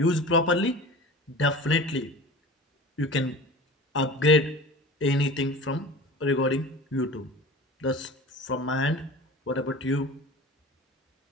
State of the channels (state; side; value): normal; both; correlation 0.36